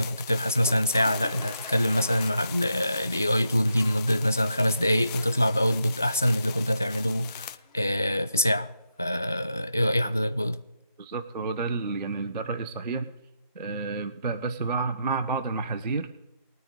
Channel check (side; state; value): both; inverted; correlation -0.82